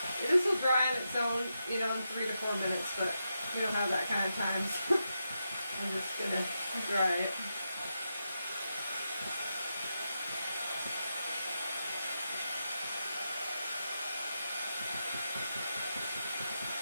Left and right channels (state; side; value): inverted; both; correlation -0.87